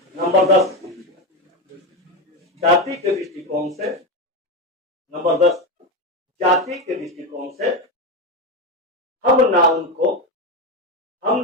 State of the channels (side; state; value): both; normal; correlation 0.14